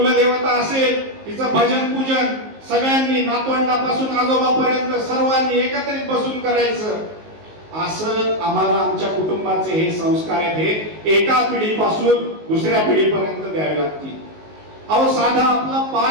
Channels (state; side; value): late; left; 19 ms